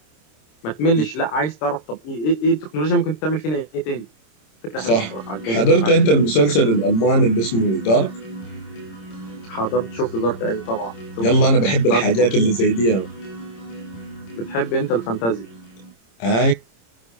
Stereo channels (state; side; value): late; right; 26 ms